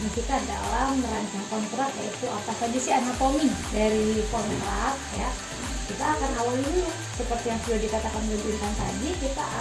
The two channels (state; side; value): identical; both; correlation 1.00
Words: dalam merancang kontrak, yaitu apa saja sih anatomi dari kontrak ya, kita akan awali dulu seperti yang sudah dikatakan oleh Intan tadi. Kita